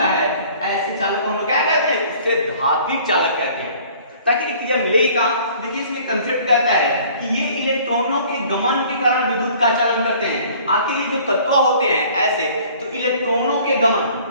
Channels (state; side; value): inverted; both; correlation -0.52